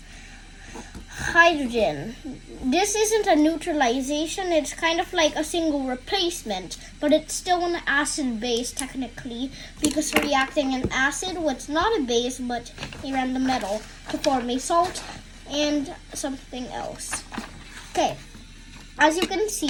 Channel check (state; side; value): identical; both; correlation 1.00